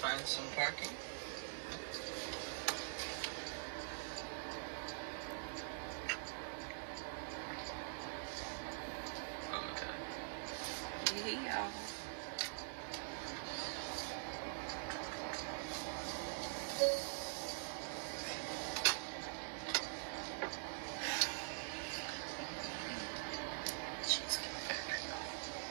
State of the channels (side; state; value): left; silent; digital silence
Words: find some parking. Oh my god. Hey, y'all.